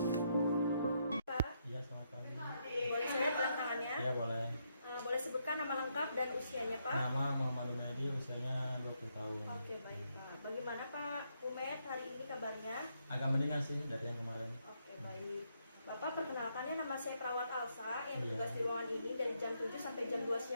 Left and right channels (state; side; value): inverted; both; correlation -0.78